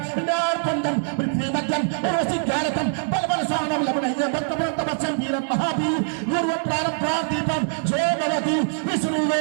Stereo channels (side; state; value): left; silent; 63 dB below the other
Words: नारकुंडम पृथ्वीमध्यम ओसिज्ञानतम बलबलसानम लवणह्यं भक्तमन्तमच्छं वीरं महावीर गुरुवत्रारं प्रादीपं जय भवति